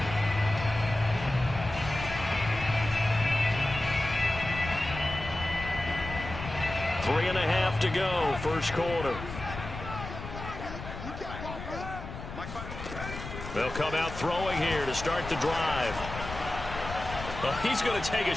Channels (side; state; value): left; noise; rumble, 10 dB below the sound